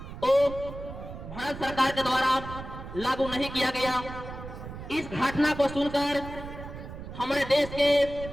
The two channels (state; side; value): noise; right; rumble, 11 dB below the sound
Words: वो भारत सरकार के द्वारा लागू नहीं किया गया। इस घटना को सुनकर हमारे देश के